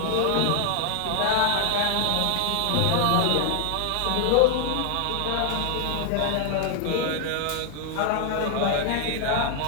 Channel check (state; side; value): different; both; correlation 0.00